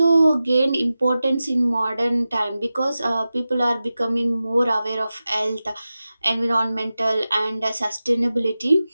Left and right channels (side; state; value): both; inverted; correlation -0.94